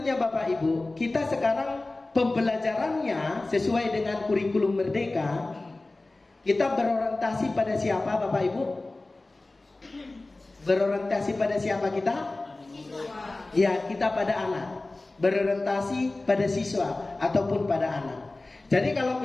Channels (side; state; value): right; quieter; 3.0 dB